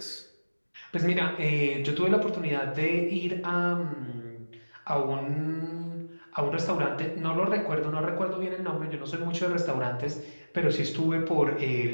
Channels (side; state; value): both; inverted; correlation -1.00